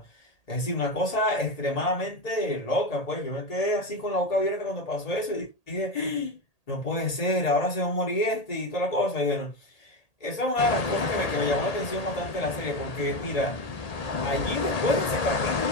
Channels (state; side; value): late; right; 1.8 ms